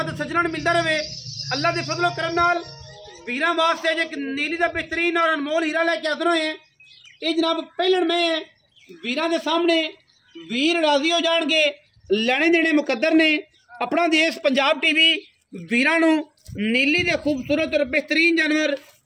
ते सज्जणां नूं मिलदा रहे। अल्लाह दे फजलो करम नाल वीरां वास्ते एक नीली दा बेहतरीन और अनमोल हीरा लैके हाज़र होए हैं। ये जनाब पहलन में वीरां दे सामने वीर राजी हो जाएंगे, लेने देने मुकद्दर ने। अपना देश पंजाब टीवी वीरां नूं नीली दे खूबसूरत और बेहतरीन जानवर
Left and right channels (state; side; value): identical; both; correlation 1.00